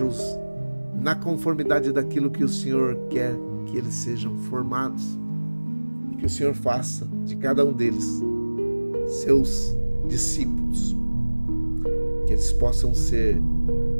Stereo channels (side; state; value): both; inverted; correlation -1.00